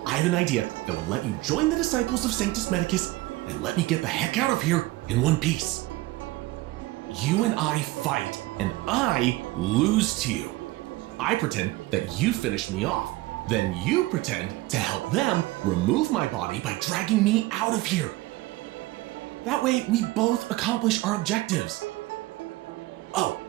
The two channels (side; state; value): left; quieter; 19.1 dB